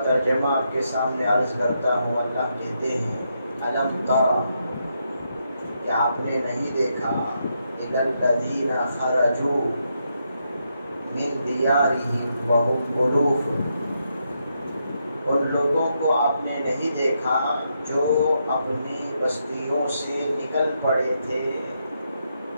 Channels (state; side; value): inverted; both; correlation -0.81